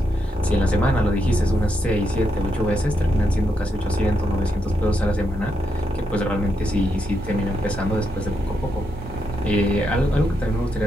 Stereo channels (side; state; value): both; normal; correlation 0.82